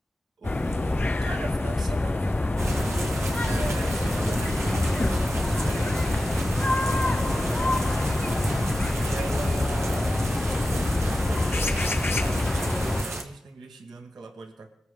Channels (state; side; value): normal; both; correlation 0.93